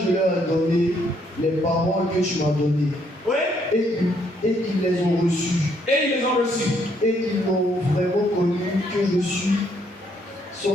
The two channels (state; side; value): normal; both; correlation 0.70